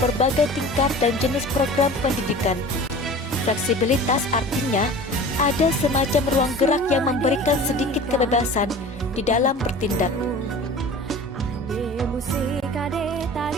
tingkat dan jenis program pendidikan. Fleksibilitas artinya ada semacam ruang gerak yang memberikan sedikit kebebasan di dalam bertindak.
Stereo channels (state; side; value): normal; both; correlation 0.39